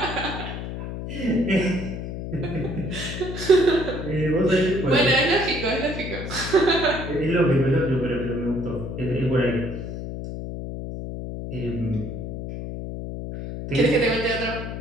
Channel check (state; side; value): noise; left; hum, 7 dB below the sound